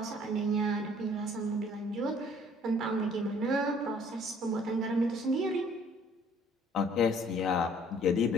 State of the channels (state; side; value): normal; both; correlation 0.57